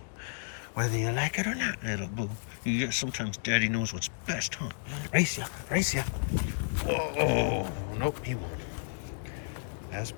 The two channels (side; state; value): right; silent; digital silence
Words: Whether you like it or not, Little Boo. Yeah, sometimes Daddy knows what's best, huh? Race ya, race ya. Whoa, nope, he won't. As